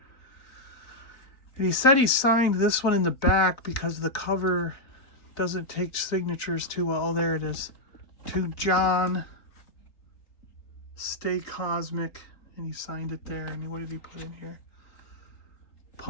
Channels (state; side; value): late; right; 4.0 ms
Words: And he said he signed this one in the back because the cover doesn't take signatures too well. Oh, there it is. To John, Stay Cosmic. And he signed it there. And what did he put in here?